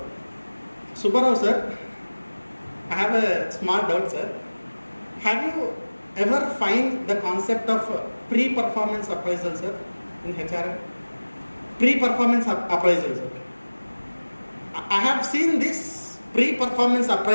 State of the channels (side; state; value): both; inverted; correlation -1.00